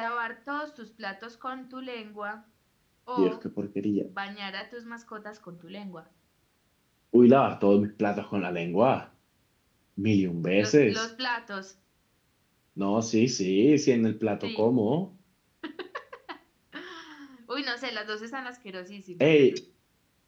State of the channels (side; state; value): both; identical; correlation 1.00